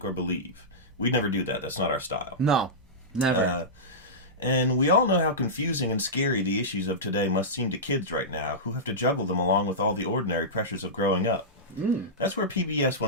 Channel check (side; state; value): both; normal; correlation -0.15